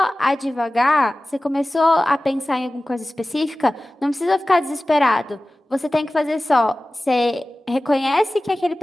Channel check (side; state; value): both; normal; correlation 0.97